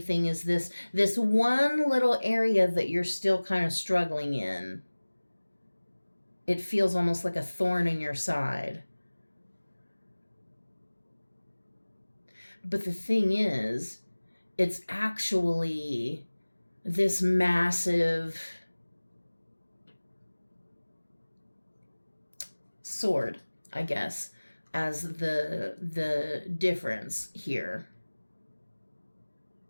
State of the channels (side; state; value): both; inverted; correlation -1.00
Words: thing is this one little area that you're still kind of struggling in. It feels almost like a thorn in your side. But the thing is, it's actually this massive sword, I guess, as the difference here.